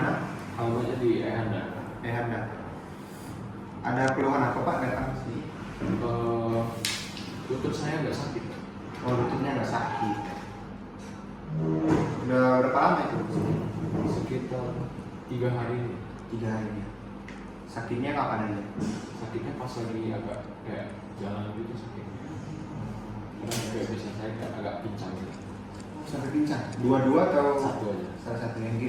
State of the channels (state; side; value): identical; both; correlation 1.00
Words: Alamatnya di Ehanda. Ehanda. Ada keluhan apa Pak datang ke sini? Lutut saya nggak sakit. Oh, lututnya nggak sakit. Udah berapa lama itu? Sekitar 3 hari. 3 hari. Sakitnya kapan aja? Sakitnya pas lagi agak kayak jalan gitu sakitnya. Karena kayak bisa saya kayak agak pincang gitu. Sampai pincang? Dua-dua atau? Satu aja. Salah satu, yang